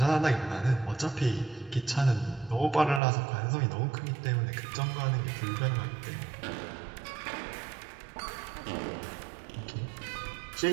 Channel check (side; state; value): left; drops out; at 3.0 s